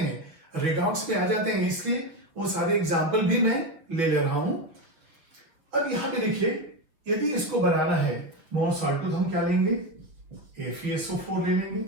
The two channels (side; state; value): left; late; 6.4 ms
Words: रेडॉक्स में आ जाते हैं, इसलिए वो सारे एग्जाम्पल भी मैं ले रहा हूं। अब यहां पे देखिए यदि इसको बनाना है मोर साल्ट तो हम क्या लेंगे, FeSO4 ले लेंगे